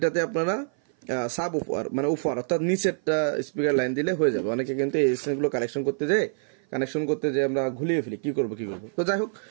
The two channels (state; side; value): silent; left; 56 dB below the other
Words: আপনারা সাব উপহার মানে উপহার অর্থাৎ নিচেরটা স্পিকার লাইন দিলে হয়ে যাবে। অনেকে কিন্তু এই গুলো কানেকশন করতে যে আমরা ঘুলিয়ে ফেলি, কি করবো। তো যাই হোক,